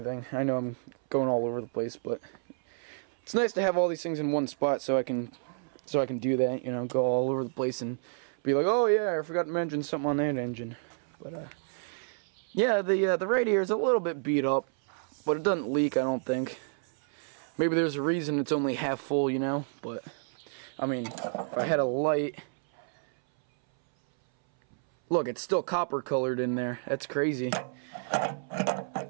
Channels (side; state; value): left; silent; 58 dB below the other